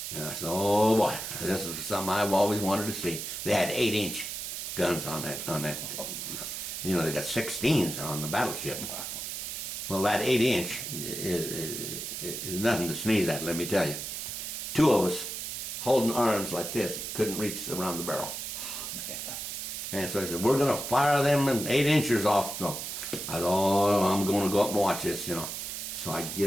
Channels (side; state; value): right; noise; hiss, 5 dB below the sound